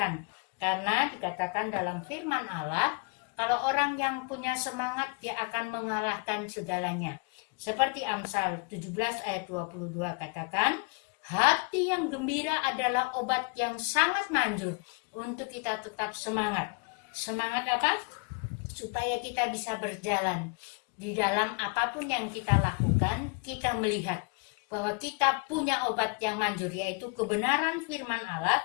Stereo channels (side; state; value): right; quieter; 34.8 dB